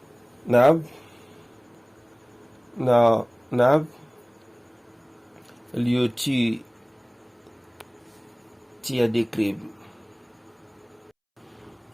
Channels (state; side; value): identical; both; correlation 1.00